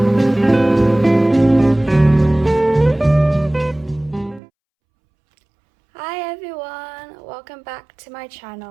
Hi everyone, welcome back to my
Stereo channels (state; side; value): drops out; left; at 4.4 s